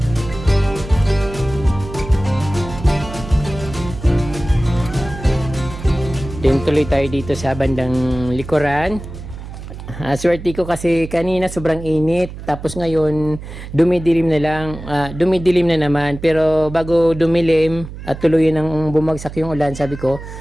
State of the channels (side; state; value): right; noise; hum, 12 dB below the sound